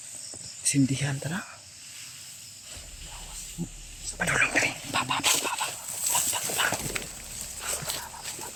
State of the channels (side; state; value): both; identical; correlation 1.00